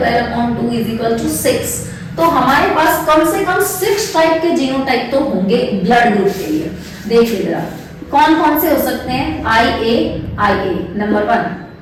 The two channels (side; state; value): both; identical; correlation 1.00